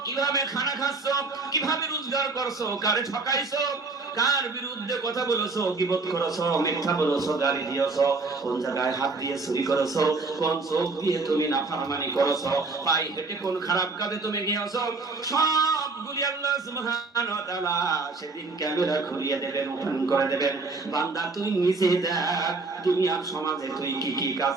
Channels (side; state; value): left; quieter; 3.8 dB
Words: কিভাবে খানা খাচ্ছো, কিভাবে রোজগার করছো, কারে ঠকাইছো, কার বিরুদ্ধে কথা বলেছো, গীবত করেছো, মিথ্যা বলেছো, গালি দিয়েছো, কোন জায়গায় হাত দিয়ে চুরি করেছো, কোন চোখ দিয়ে তুমি নাফরমানি করেছো, পায়ে হেঁটে কোন খারাপ কাজে তুমি গিয়েছো, সবগুলি আল্লাহ সুবহানাহু ওয়া তাআলা সেদিন ক্যামেরা ঘুরিয়ে দেবেন, ওপেন করে দেবেন। বান্দা তুই নিজে দেখ দুনিয়ার সমাজে তুই কি কি কাজ